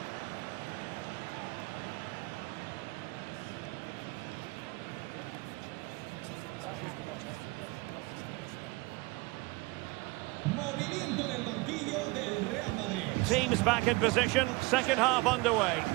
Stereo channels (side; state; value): left; quieter; 23.6 dB